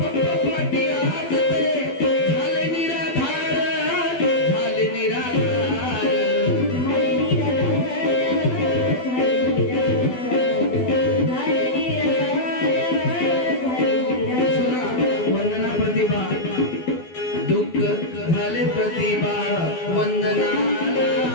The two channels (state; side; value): late; right; 12 ms